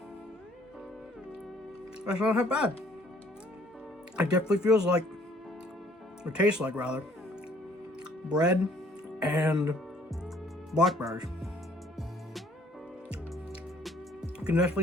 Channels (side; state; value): both; normal; correlation 0.60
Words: that's not half bad. It definitely feels like, or tastes like rather, bread and blackberries. You can